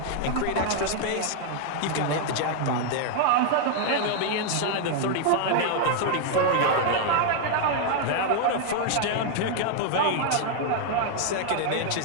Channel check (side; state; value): both; different; correlation 0.00